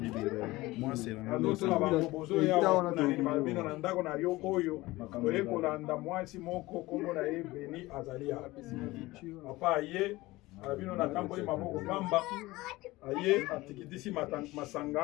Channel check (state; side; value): quieter; right; 19.6 dB